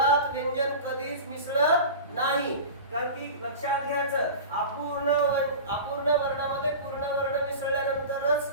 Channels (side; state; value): both; inverted; correlation -0.32